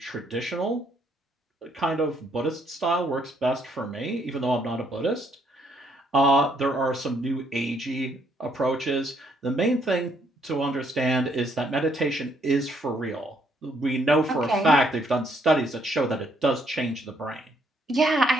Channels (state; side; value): normal; both; correlation 0.70